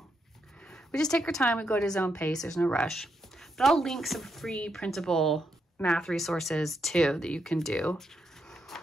we just take our time, we go at his own pace, there's no rush. But I'll link some free printable math resources too that you can do.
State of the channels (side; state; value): both; normal; correlation 0.81